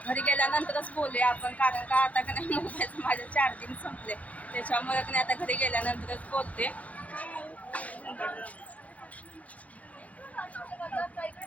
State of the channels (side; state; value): right; late; 0.069 ms